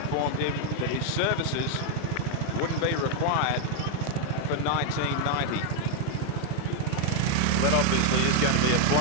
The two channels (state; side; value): different; both; correlation 0.00